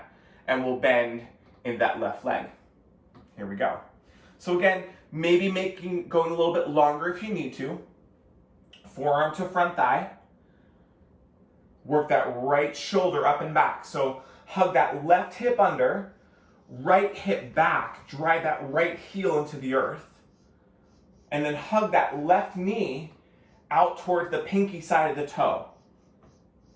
and we'll bend in that left leg. Here we go. So again, maybe going a little bit longer if you need to. Forearm to front thigh. Work that right shoulder up and back. So hug that left hip under, right hip back, drive that right heel into the earth, and then hug that left knee out towards the pinky side of the toe.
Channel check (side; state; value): both; identical; correlation 1.00